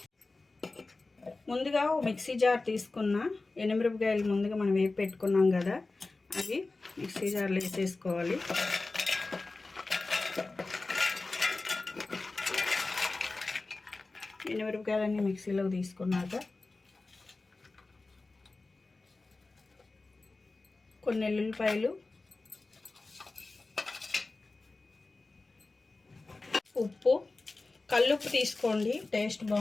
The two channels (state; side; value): quieter; right; 3.4 dB